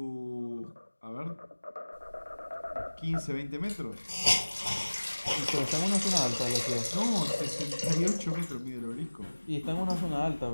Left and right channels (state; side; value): inverted; both; correlation -1.00